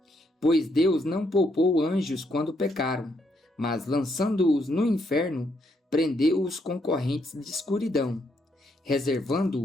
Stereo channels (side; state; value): both; normal; correlation 0.75